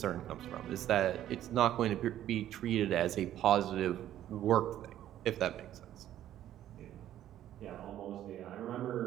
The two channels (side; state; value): left; quieter; 12.1 dB